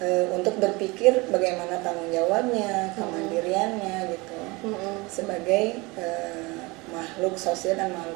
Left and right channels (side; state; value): left; quieter; 24.7 dB